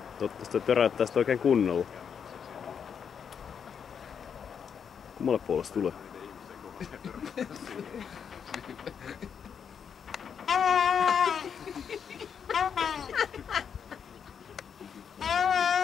Toivottavasti toi töräyttää sitä oikein kunnolla. Kummalle puolelle se tulee?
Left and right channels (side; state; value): right; quieter; 7.3 dB